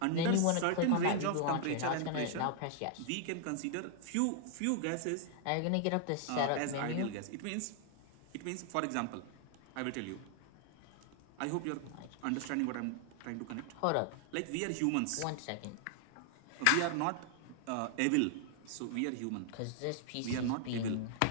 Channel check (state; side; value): different; both; correlation 0.00